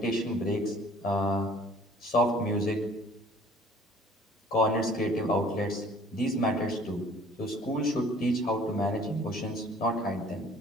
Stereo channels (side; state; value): both; normal; correlation 0.53